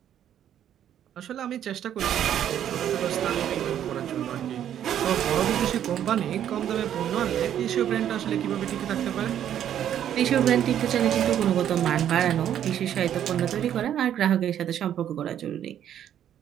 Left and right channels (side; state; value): left; quieter; 10.3 dB